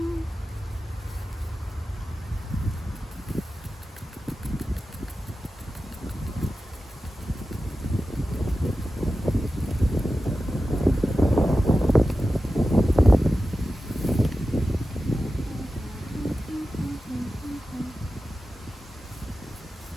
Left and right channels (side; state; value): both; normal; correlation 0.93